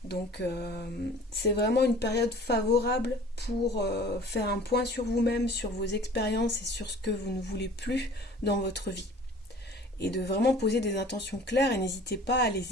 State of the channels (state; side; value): normal; both; correlation 0.47